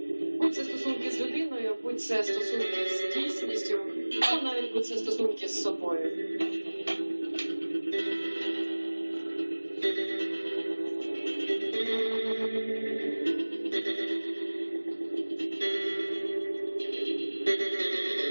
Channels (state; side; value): inverted; both; correlation -1.00